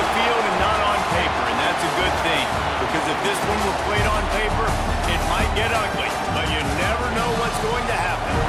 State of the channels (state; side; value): identical; both; correlation 1.00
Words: the field and not on paper, and that's a good thing. Because if this one were played on paper, it might get ugly, but you never know what's going to happen.